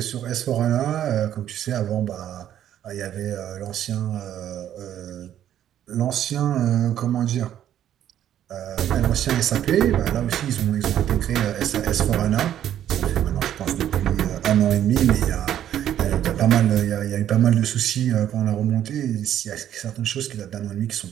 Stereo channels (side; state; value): left; quieter; 10.9 dB